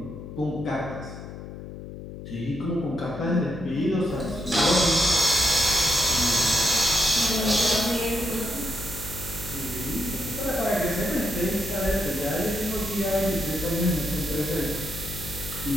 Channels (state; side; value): noise; left; hum, 11 dB below the sound